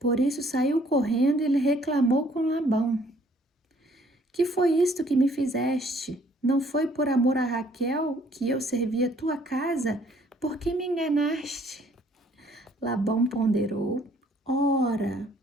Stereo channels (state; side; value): normal; both; correlation 0.61